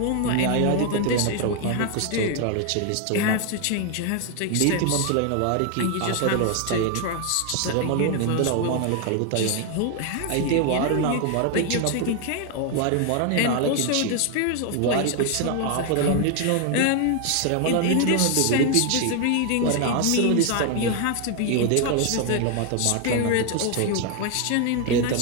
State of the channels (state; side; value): different; both; correlation 0.01